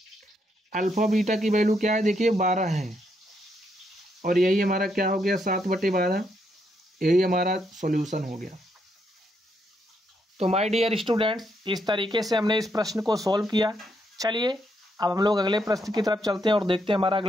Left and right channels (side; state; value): both; normal; correlation 0.77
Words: अल्फा बीटा की वैल्यू क्या है देखिए 12 है, और यही हमारा क्या हो गया 7/12, यही हमारा सॉल्यूशन हो गया। तो माय डियर स्टूडेंट्स इस तरीके से हमने इस प्रश्न को सॉल्व किया। चलिए अब हम लोग अगले प्रश्न की तरफ चलते हैं और देखते हैं हमारा